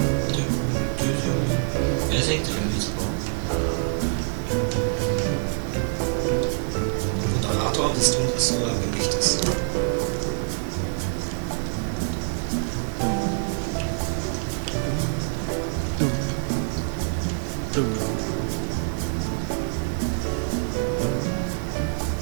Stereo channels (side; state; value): left; silent; digital silence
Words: Wer singt da mit? Moderator, bist du das oder bin ich das?